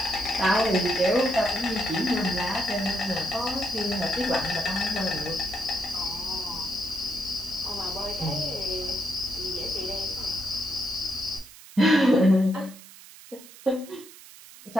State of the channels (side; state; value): right; noise; hiss, 19 dB below the sound